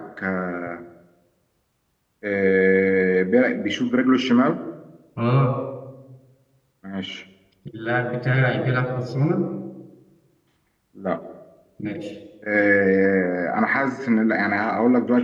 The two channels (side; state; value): both; identical; correlation 1.00